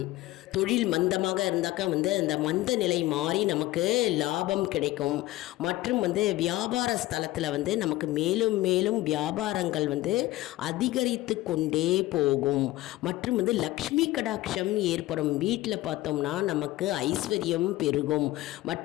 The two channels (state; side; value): quieter; right; 17.4 dB